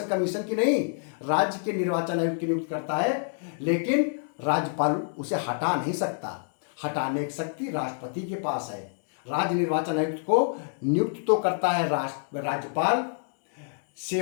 कमीशन की नहीं। राज्य के निर्वाचन आयुक्त की नियुक्ति करता है, लेकिन राज्यपाल उसे हटा नहीं सकता। हटाने की शक्ति राष्ट्रपति के पास है। राज्य निर्वाचन आयुक्त को नियुक्त तो करता है राज्यपाल,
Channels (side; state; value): right; silent; digital silence